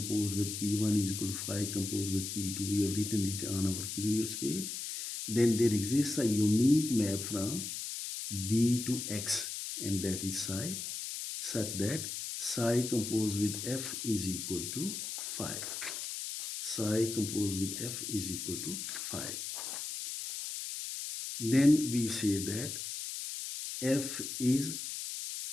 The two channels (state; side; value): noise; left; hiss, 5 dB below the sound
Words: with P1 is equal to phi composed with P2. We have written it on our previous page. Then there exists a unique map from B to X, and that is psi, such that psi composed with F is equal to phi. Psi composed with F is equal to phi. Then we say that F is